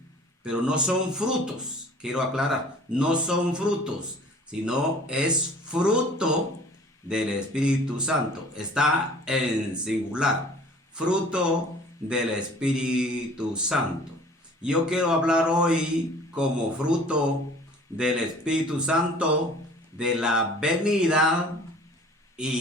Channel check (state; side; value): normal; both; correlation 0.48